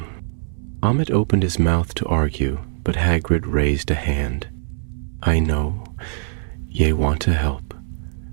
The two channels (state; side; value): silent; left; 64 dB below the other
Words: Amit opened his mouth to argue, but Hagrid raised a hand. "I know. Ye want to help.